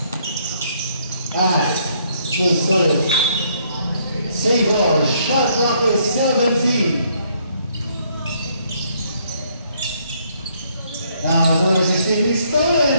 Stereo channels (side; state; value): both; inverted; correlation -0.68